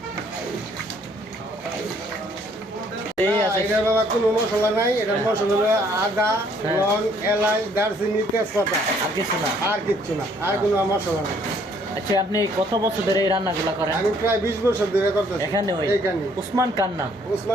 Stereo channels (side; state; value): both; normal; correlation 0.63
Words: এটার বাবা কোনো মশলা নাই। এটার মশলা হলো আদা, লং, এলাচ, দারচিনি, তেজপাতা, আর কিছু না। আর কিচ্ছু না, আর কোনো মশলা নাই। আচ্ছা, আপনি কত বছর ধরে এই রান্নাগুলো করেন? আমি প্রায় 20 বছর ধরে করতেছি এখানে ওই এইখানে। উসমান কার নাম?